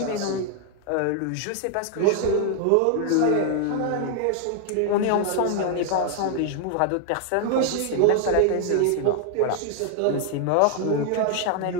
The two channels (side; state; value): both; different; correlation 0.00